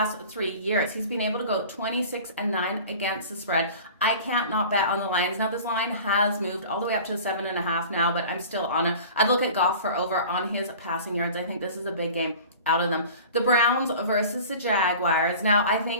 3 years, he's been able to go 26-9 against the spread. I can't not bet on the Lions. Now, this line has moved all the way up to 7.5 now, but I'm still on it. I'd look at Goff for over on his passing yards. I think this is a big game out of them. The Browns versus the Jaguars. Now, I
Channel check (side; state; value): both; inverted; correlation -0.41